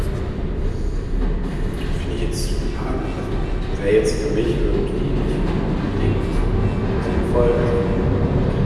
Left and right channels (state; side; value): identical; both; correlation 1.00